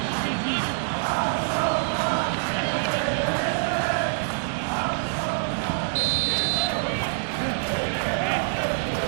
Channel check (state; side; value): silent; left; digital silence